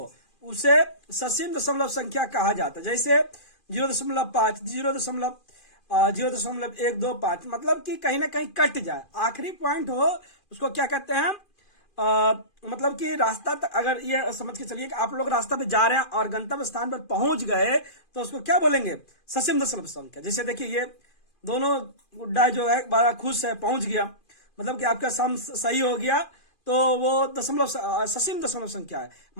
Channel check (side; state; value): right; late; 2.4 ms